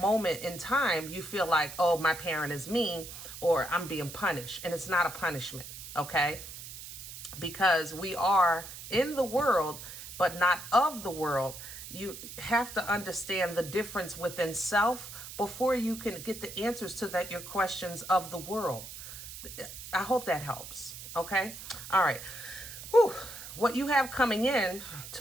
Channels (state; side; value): noise; right; hiss, 12 dB below the sound